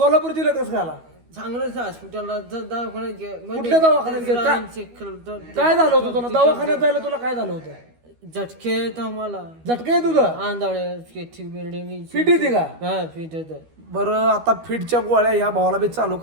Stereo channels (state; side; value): late; left; 12 ms